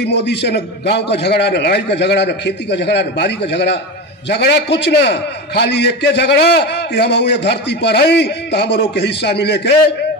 मोदी से, न गांव का झगड़ा, न लड़ाई का झगड़ा, न खेती का झगड़ा, न बारी का झगड़ा, झगड़ा कुछ ना, खाली एक के झगड़ा कि हम ये धरती पर आई तो हम के हिस्सा मिले के।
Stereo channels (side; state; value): both; normal; correlation 0.23